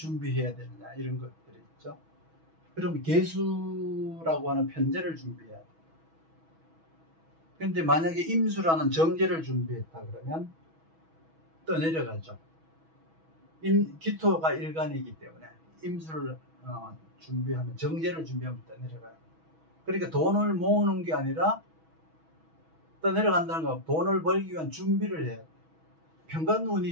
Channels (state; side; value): late; left; 6.2 ms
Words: 되느냐, 이런 것들이 있죠. 그럼 계수라고 하는 편제를 준비해야 돼. 그런데 만약에 임수라는 정제를 준비했다 그러면 떠내려가죠. 기토가 일간이기 때문에 임수를 준비하면, 정제를 준비하면 떠내려가요. 그러니까 돈을 모으는 게 아니라 떠내려간다는 건 돈을 벌기 위한 준비를 해야 돼.